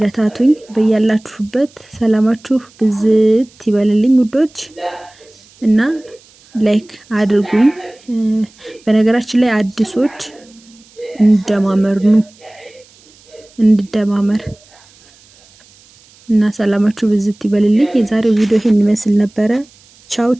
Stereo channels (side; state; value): right; noise; hiss, 28 dB below the sound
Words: በያላችሁበት ሰላማችሁ ብዝት ይበልልኝ ውዶች እና ላይክ አድርጉኝ። በነገራችን ላይ አዲሶች እንደማመር እና ሰላማችሁ ብዝት ይበልልኝ። የዛሬው ቪዲዮ ይሄን ይመስል ነበረ። ቻው